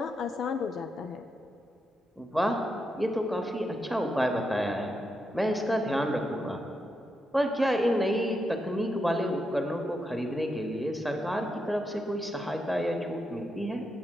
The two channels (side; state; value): both; normal; correlation 0.84